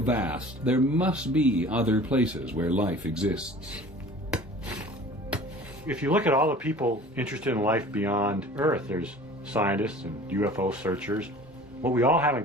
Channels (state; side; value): normal; both; correlation 0.44